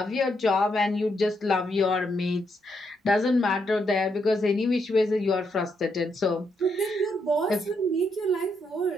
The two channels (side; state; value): both; normal; correlation 0.78